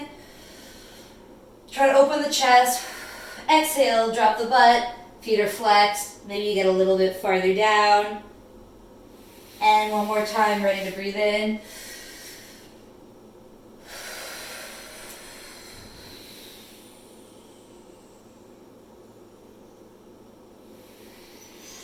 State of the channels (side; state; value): both; identical; correlation 1.00